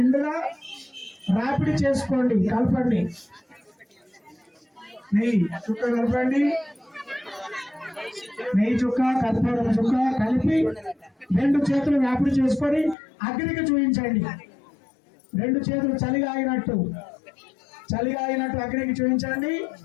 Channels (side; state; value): right; drops out; at 13.0 s